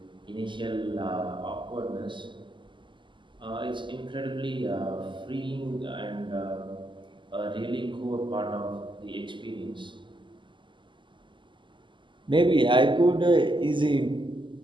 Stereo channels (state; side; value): late; left; 0.24 ms